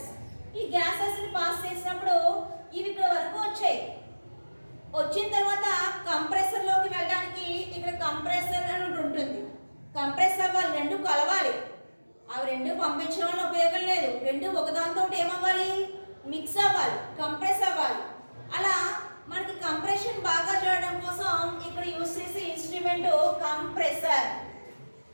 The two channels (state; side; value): inverted; both; correlation -1.00